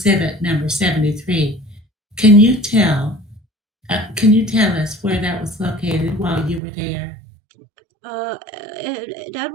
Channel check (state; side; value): drops out; left; at 6.6 s